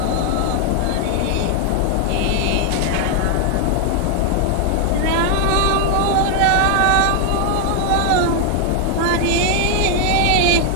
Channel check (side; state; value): both; different; correlation 0.00